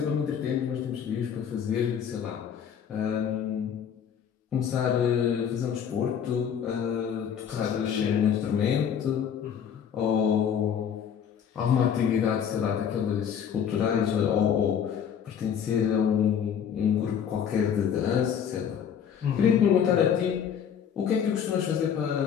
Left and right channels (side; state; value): right; quieter; 8.1 dB